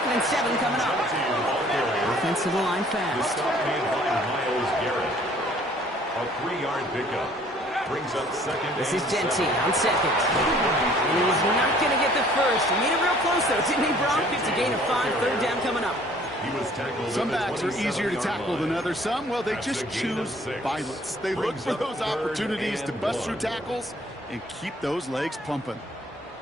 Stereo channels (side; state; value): both; normal; correlation 0.56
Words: and 7 coming up. Offensive line fast. A 3-yard pickup. Brings up 2nd. This is Genty on 2nd. And he's not going to get the first. He made it real close, though, didn't he, Bronk? It's a gain of 5. 3rd down coming up. Some backs are easier to tackle than others. Some, well, they just choose violence. They look for those opportunities to bust through tackles and keep those legs pumping.